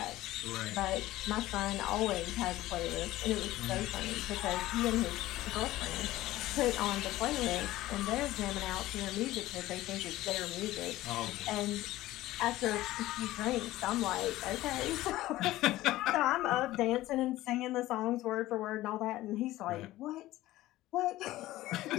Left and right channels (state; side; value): quieter; right; 16.3 dB